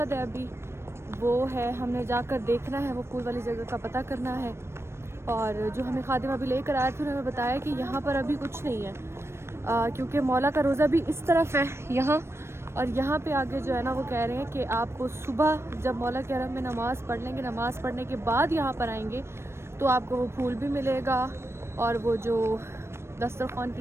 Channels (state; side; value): late; left; 0.12 ms